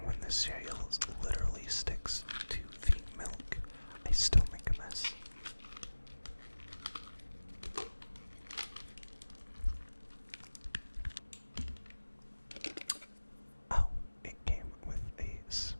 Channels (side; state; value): both; inverted; correlation -1.00